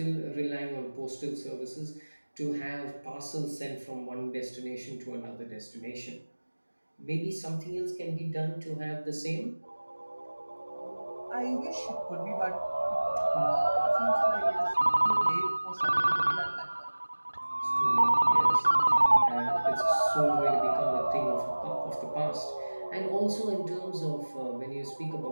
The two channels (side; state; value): both; inverted; correlation -1.00